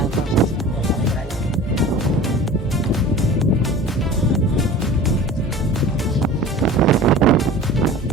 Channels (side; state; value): both; normal; correlation 0.39